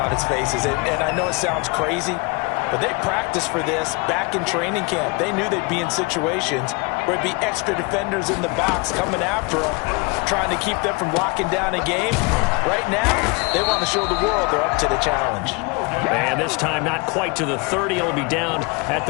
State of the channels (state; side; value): quieter; right; 27.3 dB